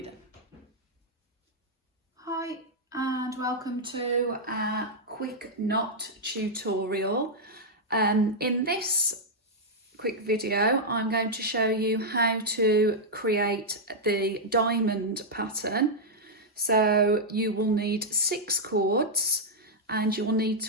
done. Hi and welcome to our quick knot tutorial. In this quick video I'm going to show you how to create the diamond pattern. So you will need 6 cords and you'll need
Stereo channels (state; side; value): normal; both; correlation -0.04